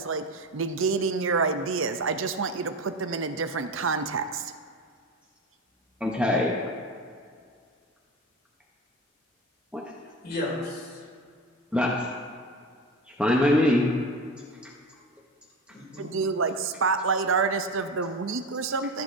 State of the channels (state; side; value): normal; both; correlation 0.26